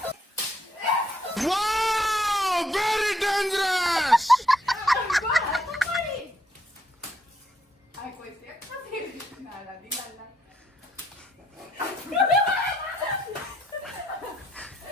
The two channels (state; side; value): normal; both; correlation 0.73